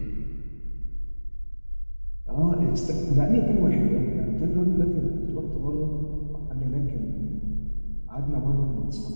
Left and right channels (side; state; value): both; inverted; correlation -1.00